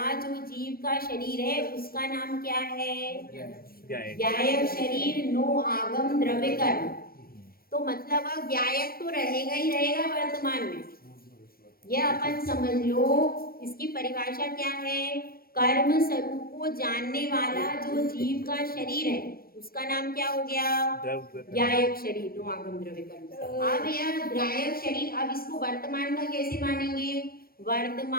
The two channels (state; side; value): late; right; 0.43 ms